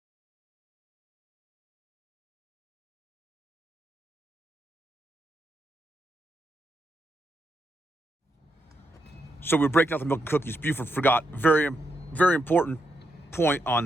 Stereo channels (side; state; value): both; normal; correlation 0.81